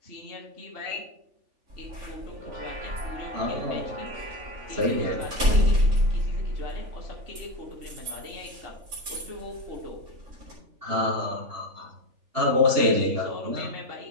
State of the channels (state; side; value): late; left; 3.4 ms